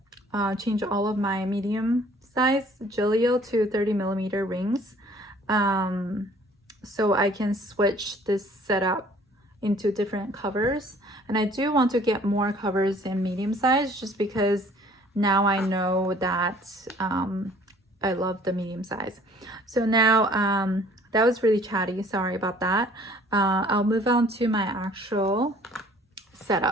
change all of my medium size Gillio to 30mm rings, so I can switch this setup into different covers. And I do want to get more covers in medium size, just because now I know that I love the medium size. So now that was really chatty, sorry about that. I'll move on to my actual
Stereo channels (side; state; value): both; normal; correlation 0.55